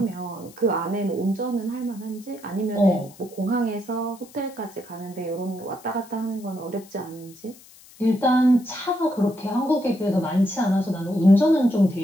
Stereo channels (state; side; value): noise; left; hiss, 23 dB below the sound